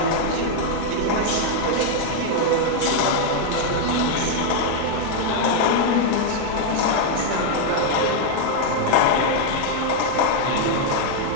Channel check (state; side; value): different; both; correlation 0.00